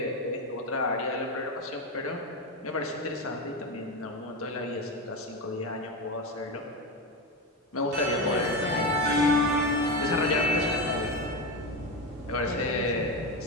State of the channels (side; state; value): both; normal; correlation 0.16